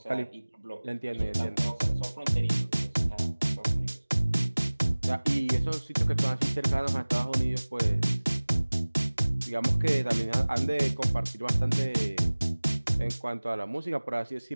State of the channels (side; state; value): both; inverted; correlation -1.00